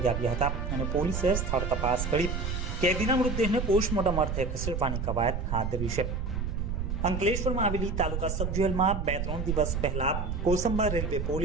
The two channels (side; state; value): right; noise; rumble, 2 dB below the sound